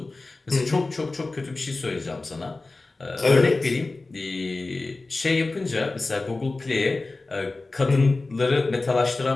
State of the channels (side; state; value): right; quieter; 3.3 dB